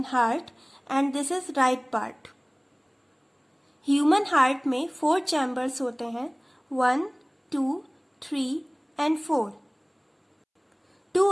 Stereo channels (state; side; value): identical; both; correlation 1.00